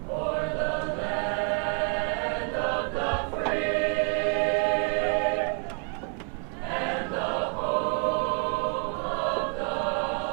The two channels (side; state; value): left; quieter; 34.7 dB